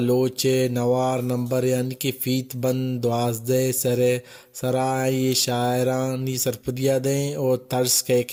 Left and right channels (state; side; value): identical; both; correlation 1.00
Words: نوار نمبر یعنی کہ فیت بند 12 سرائی شاعرانی سرپدیا دیں اور طرز